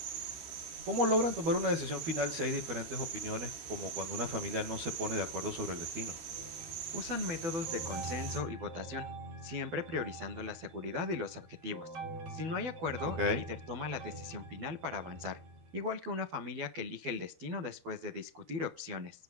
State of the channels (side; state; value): left; late; 12 ms